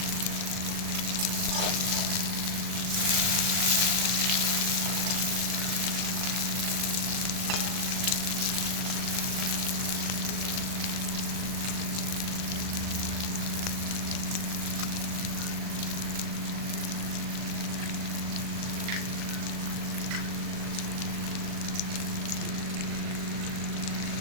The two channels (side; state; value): left; late; 39 ms